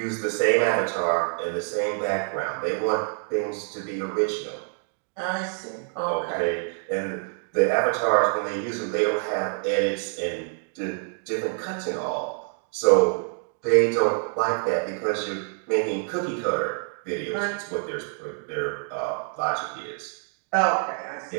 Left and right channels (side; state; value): left; silent; 56 dB below the other